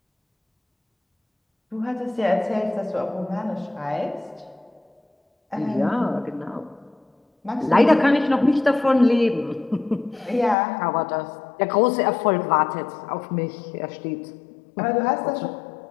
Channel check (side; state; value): right; drops out; at 10.6 s